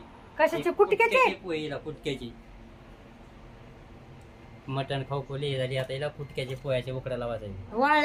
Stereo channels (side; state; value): both; identical; correlation 1.00